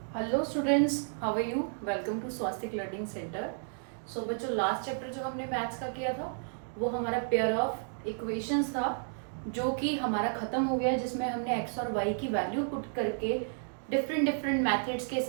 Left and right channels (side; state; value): left; silent; digital silence